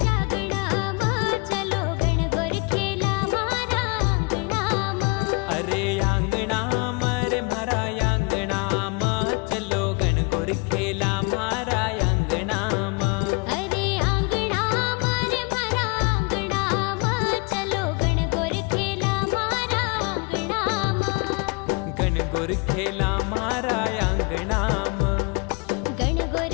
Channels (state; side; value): quieter; right; 30.6 dB